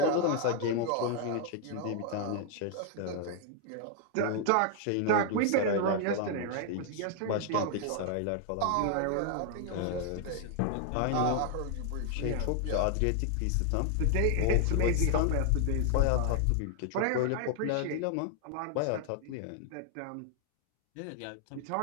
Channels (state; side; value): different; both; correlation 0.00